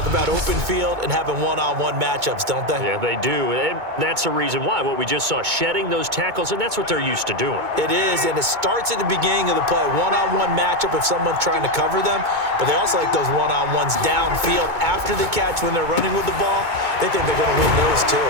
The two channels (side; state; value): left; late; 2.2 ms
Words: about open field and having one-on-one matchups, don't they? Yeah, they do. And that's the reason why. What we just saw, shedding those tackles, and that's what they're used to doing. It is, and it starts at the beginning of the play. One-on-one matchup if someone's trying to cover them, but they also like those one-on-ones downfield after the catch when they're running with the ball. They think they're going to win those too.